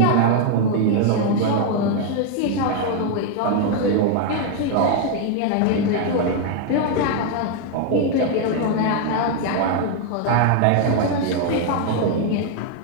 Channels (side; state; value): both; different; correlation 0.01